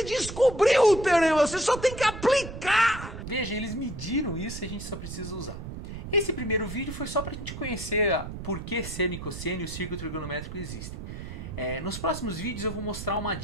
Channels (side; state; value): right; noise; rumble, 9 dB below the sound